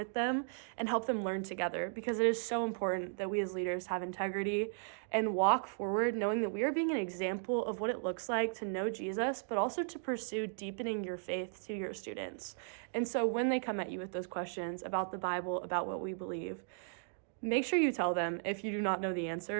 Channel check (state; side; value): silent; left; digital silence